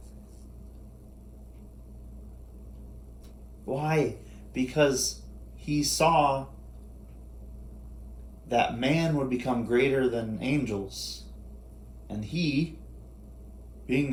Why? Because he saw that man would become greater than angels. And he, being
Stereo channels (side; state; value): both; identical; correlation 1.00